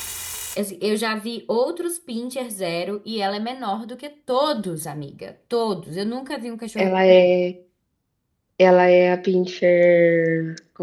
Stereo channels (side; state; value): both; identical; correlation 1.00